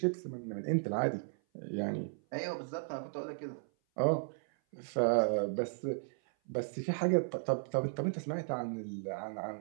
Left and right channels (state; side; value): silent; left; 54 dB below the other